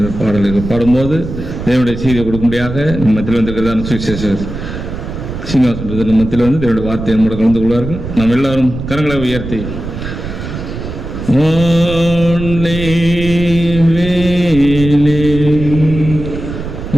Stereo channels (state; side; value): noise; right; rumble, 8 dB below the sound